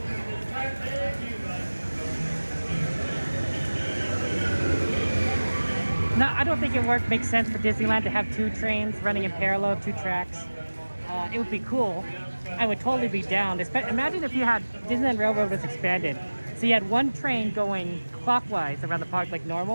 No, I don't think it makes sense for Disneyland to have 2 trains running in parallel, 2 tracks. It would be cool. I would totally be down. Imagine if you had Disneyland Railroad was expanded. So you had 1 train going clockwise around the park like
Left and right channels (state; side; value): inverted; both; correlation -1.00